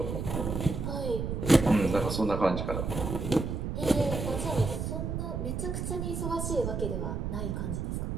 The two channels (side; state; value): right; noise; rumble, 3 dB below the sound